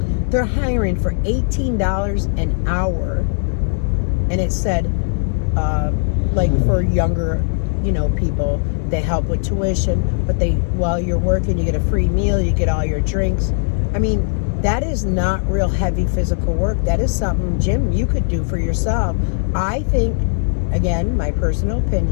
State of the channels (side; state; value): right; silent; 67 dB below the other